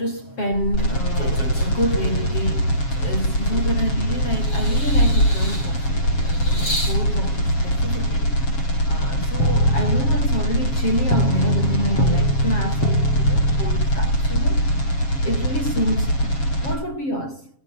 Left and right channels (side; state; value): right; late; 7.3 ms